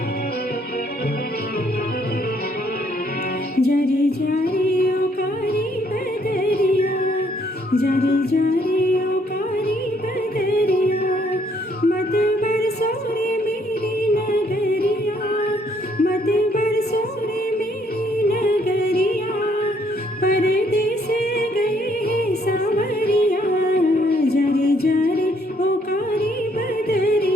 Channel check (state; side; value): normal; both; correlation 0.67